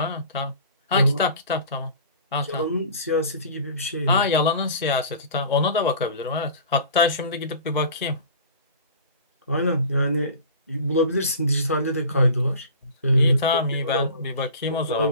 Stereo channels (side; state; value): both; inverted; correlation -0.41